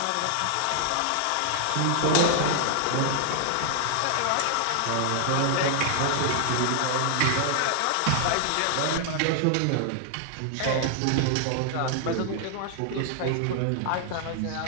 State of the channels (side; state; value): both; different; correlation 0.00